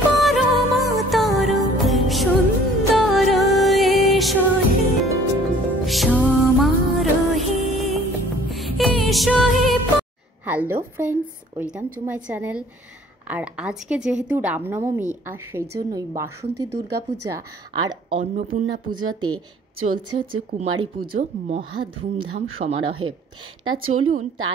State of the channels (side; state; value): both; normal; correlation 0.54